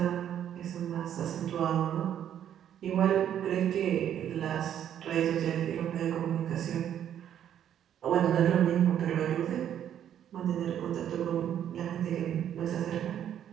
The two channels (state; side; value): quieter; left; 10.0 dB